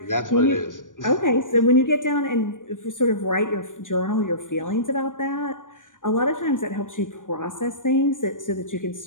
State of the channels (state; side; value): late; right; 0.88 ms